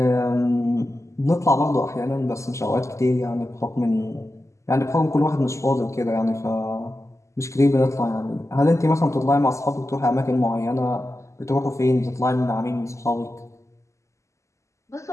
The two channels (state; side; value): late; right; 0.14 ms